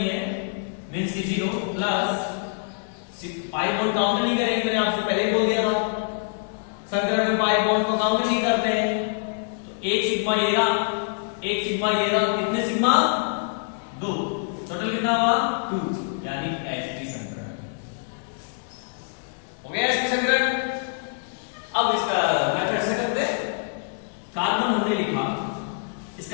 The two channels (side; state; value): right; silent; digital silence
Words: है, मींस की 0 प्लस पाई बॉन्ड काउंट नहीं करेंगे, मैंने आपसे पहले ही बोल दिया था, संकरण में पाई बॉन्ड को काउंट नहीं करते हैं। तो एक सिग्मा ये रहा, एक सिग्मा ये रहा, कितने सिग्मा, 2, टोटल कितना हुआ, 2, यानी sp संकरण हो गया, sp संकरण। अब इसका मेथड से करते, कार्बन हमने लिखा, इसका